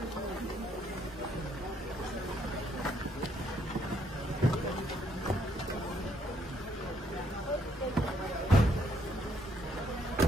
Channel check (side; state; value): both; normal; correlation 0.71